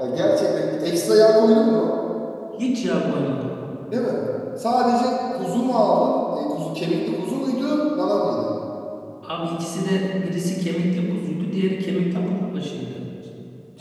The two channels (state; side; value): identical; both; correlation 1.00